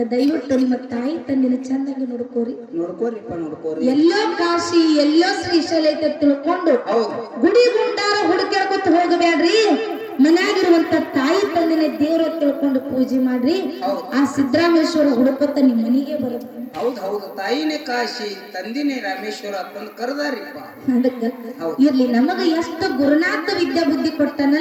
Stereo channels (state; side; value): identical; both; correlation 1.00